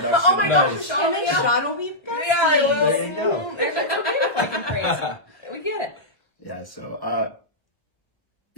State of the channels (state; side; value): late; right; 1.3 ms